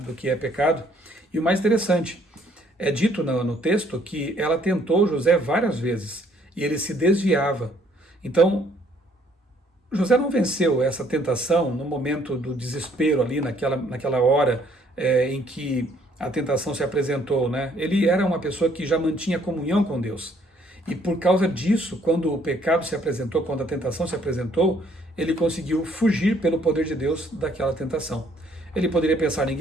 que é pecado. E o mais interessante, é dito no texto que ela tentou José várias vezes e ele se desviava. Então, José não venceu essa tentação no momento do desespero ali, naquela hora em que a tentação se apresentou, Ele era uma pessoa que já mantinha comunhão com Deus. E por causa disso, quando o pecado se apresentou, quando a tentação se apresentou, ele conseguiu fugir pelo poder de Deus daquela tentação. Ele poderia pensar,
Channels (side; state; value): both; normal; correlation 0.64